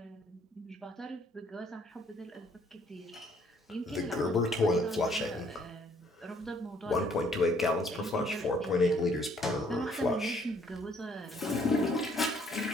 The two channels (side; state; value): both; normal; correlation 0.64